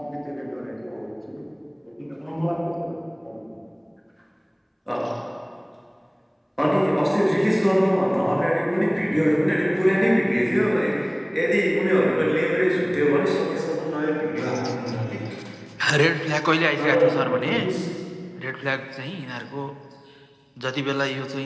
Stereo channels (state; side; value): identical; both; correlation 1.00